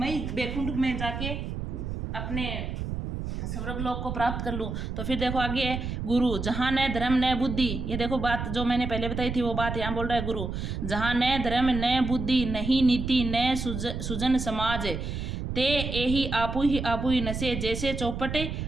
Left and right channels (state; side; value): noise; right; rumble, 4 dB below the sound